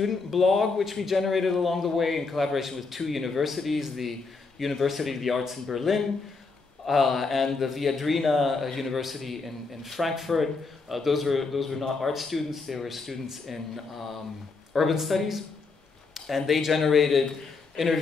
blog, which we generated along the way in collaboration with 2 universities, the University of the Arts in Berlin and the Viadrina University in Frankfurt. Those were not art students; they were students in urban studies. And they generated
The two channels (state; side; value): quieter; right; 4.2 dB